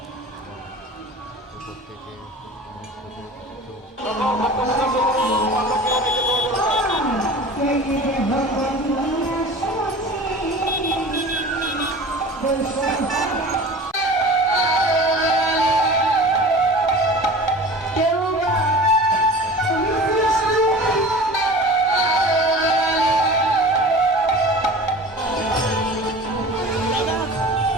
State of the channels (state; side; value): normal; both; correlation 0.39